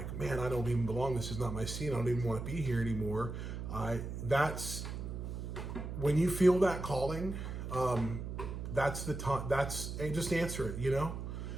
man, I don't even belong. This is not my scene. I don't even want to be here anymore. That's when you feel that calling. That's the time. Just answer it. You know,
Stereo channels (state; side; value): noise; right; hum, 6 dB below the sound